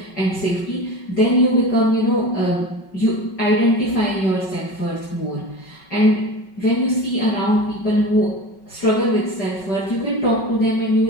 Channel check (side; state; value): right; late; 5.3 ms